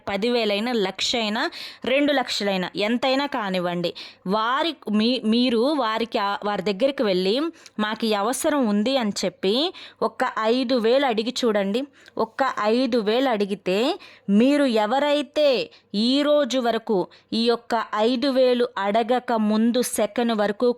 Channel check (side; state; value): both; identical; correlation 1.00